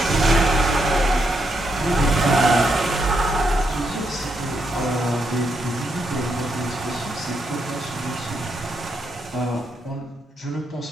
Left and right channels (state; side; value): normal; both; correlation 0.79